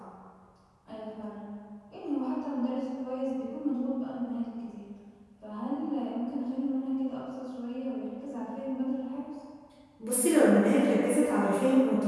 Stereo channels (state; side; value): identical; both; correlation 1.00